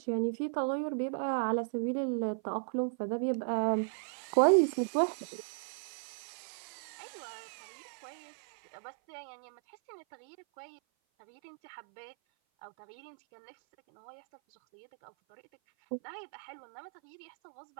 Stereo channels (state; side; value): silent; left; 54 dB below the other